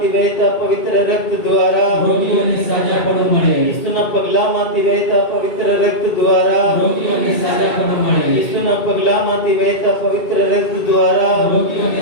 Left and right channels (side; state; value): right; late; 2.2 ms